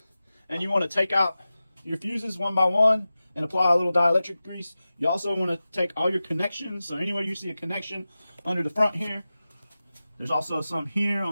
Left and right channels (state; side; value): inverted; both; correlation -0.95